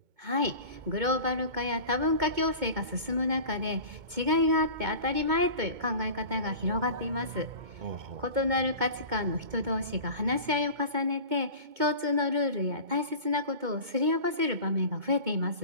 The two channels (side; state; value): left; late; 2.2 ms